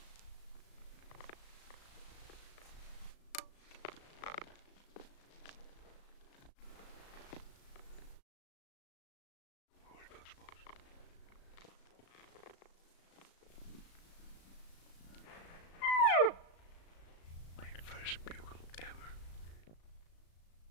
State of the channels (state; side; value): late; right; 36 ms